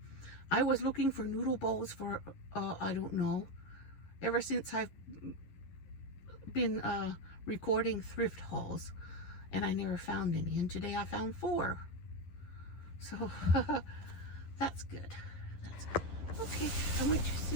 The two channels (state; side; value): late; right; 11 ms